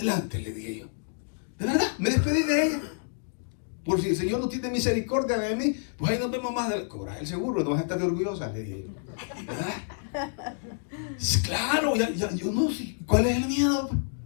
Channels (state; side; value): silent; right; digital silence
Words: le dije yo. De verdad, me despedí de ella. Por si el Señor no tiene misericordia de mí, pues ahí nos vemos más adelante. Cobra el seguro, no vas a estar orgullosa, le dije yo. ¿Verdad? Claro, yo no sé. ¿Cuál es el miedo?